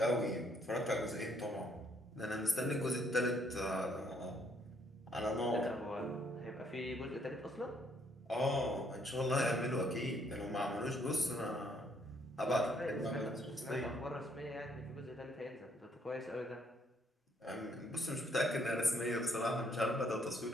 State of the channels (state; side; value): normal; both; correlation 0.68